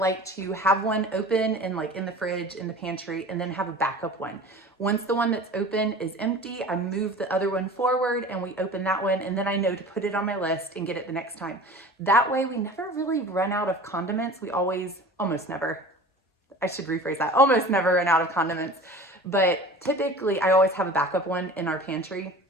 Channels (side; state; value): both; normal; correlation 0.39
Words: to have one open and like in the fridge, in the pantry, and then have a backup one. Once the one that's open is empty, I move the other one forward and we open that one, and then I know to put it on my list and get it the next time. That way we never really run out of condiments. We almost never, I should rephrase that, almost never run out of condiments. But typically I always have a backup one in our pantry.